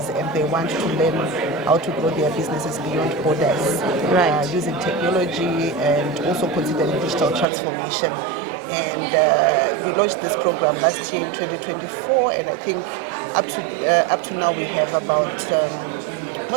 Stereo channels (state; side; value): drops out; left; at 7.5 s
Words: and they want to learn how to grow their businesses beyond borders, using technology and also considering digital transformation. And we launched this program last year in 2024, and I think up to now we have about more